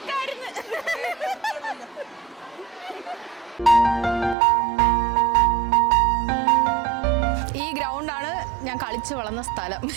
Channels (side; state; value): left; drops out; at 4.4 s